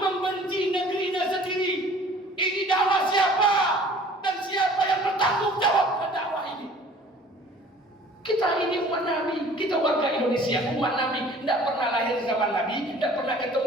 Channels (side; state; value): both; normal; correlation 0.50